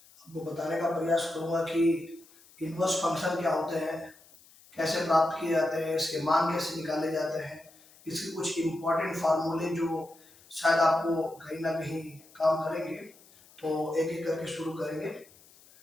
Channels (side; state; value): left; noise; hiss, 26 dB below the sound